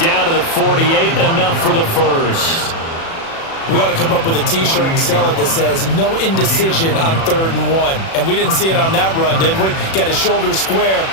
to the 48, enough for the first. We ought to come up with a T-shirt and sell it that says, no indecision on 3rd and 1. And we didn't see it on that run, did we? Got his shoulders square,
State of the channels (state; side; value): late; right; 36 ms